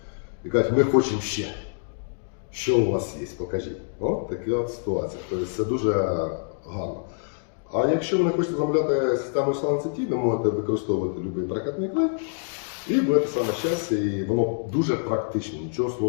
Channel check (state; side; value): silent; right; digital silence